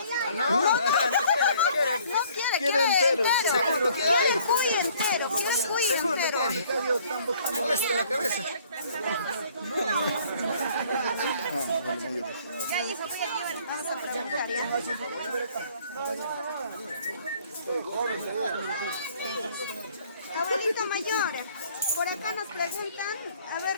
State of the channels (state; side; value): inverted; both; correlation -0.58